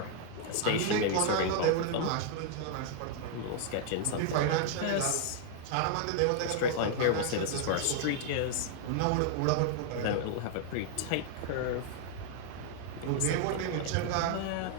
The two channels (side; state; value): both; different; correlation 0.00